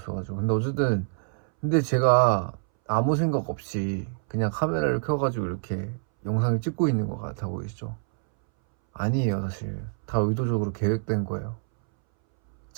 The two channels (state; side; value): silent; left; 61 dB below the other